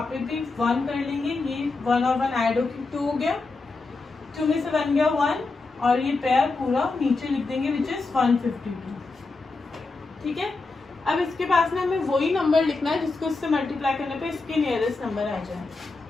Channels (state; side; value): quieter; right; 3.7 dB